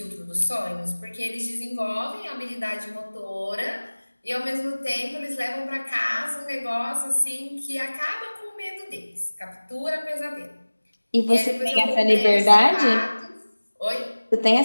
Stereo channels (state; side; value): inverted; both; correlation -1.00